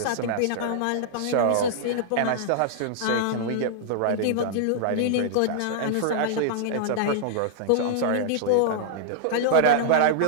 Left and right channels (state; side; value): different; both; correlation -0.01